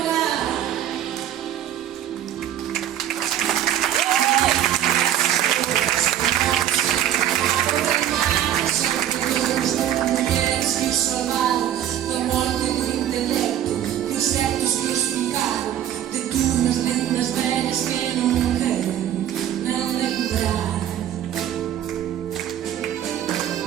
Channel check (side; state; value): left; quieter; 11.0 dB